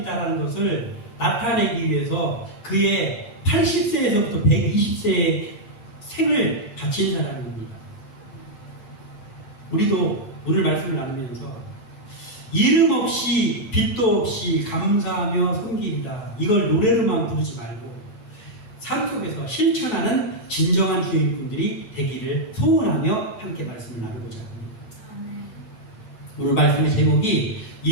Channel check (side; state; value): right; late; 7.9 ms